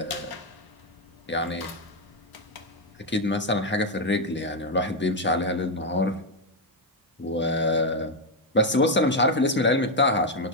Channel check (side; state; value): both; normal; correlation 0.04